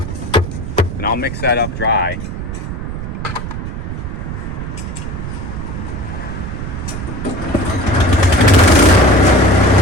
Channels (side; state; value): right; noise; rumble, 6 dB below the sound